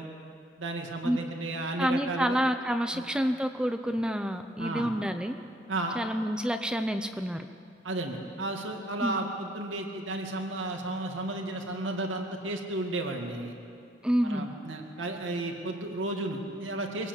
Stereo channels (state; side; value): normal; both; correlation 0.65